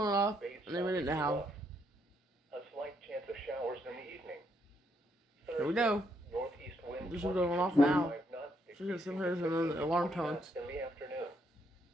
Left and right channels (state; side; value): normal; both; correlation 0.74